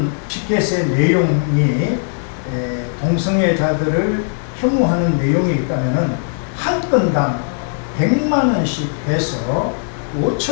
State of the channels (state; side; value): silent; right; digital silence